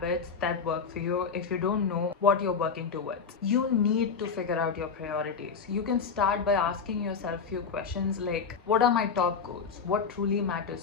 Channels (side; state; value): right; quieter; 5.7 dB